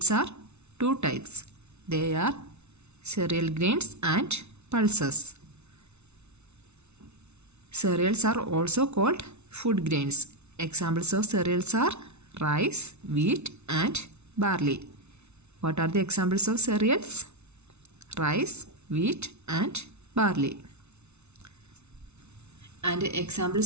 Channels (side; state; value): left; late; 0.81 ms